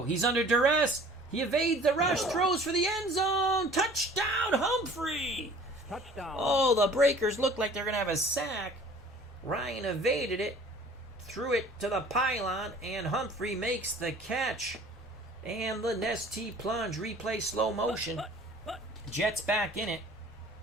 He's under duress. He evades the rush. Throws for the end zone. Touchdown, Humphrey. Touchdown. Oh, the Breakers look like they're going to have a sack. Ryan evaded it. Threw it to the pylon. And Humphrey makes the catch. And the Nestea plunge. Replay slow motion. Jets back in it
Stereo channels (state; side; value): normal; both; correlation 0.49